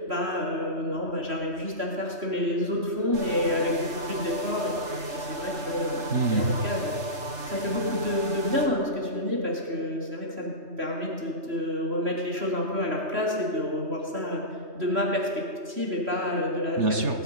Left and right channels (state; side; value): late; left; 3.4 ms